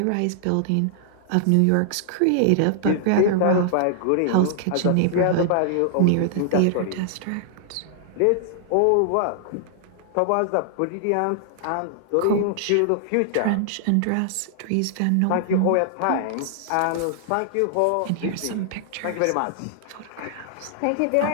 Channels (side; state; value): both; different; correlation -0.01